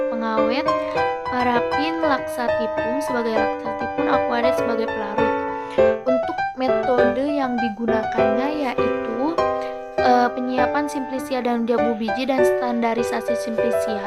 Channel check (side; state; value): both; identical; correlation 1.00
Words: pengawet, parafin laksatifum sebagai laksatifum, aquaret sebagai pelarut. Untuk metode yang digunakannya yaitu penyiapan simplisia daun jambu biji dan standarisasi